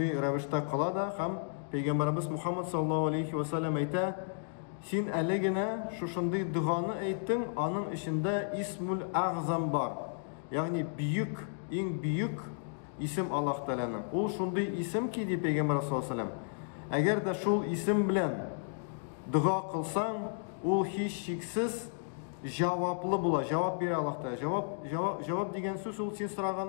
ravishda kıla da hem Peygamberimiz Muhammed sallallahu aleyhi ve sellem ayta: "Sen elegine şunday duanı aytdın, anın içinde İsmul Azam var. Yani büyük, en büyük isim Allah Teala'nın. O şunday isim ki di Peygamber sallallahu aleyhi ve sellem. Eğer de şul isim bilen dua kılsan, o hiç şeksiz cevaplı bula, cevap bir Allah Teala. Cevap degen söz ol sen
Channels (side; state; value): right; silent; digital silence